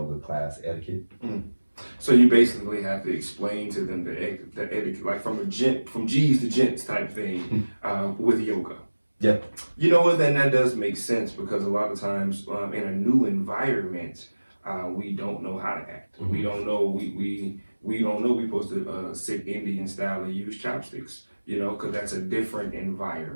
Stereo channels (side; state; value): both; inverted; correlation -1.00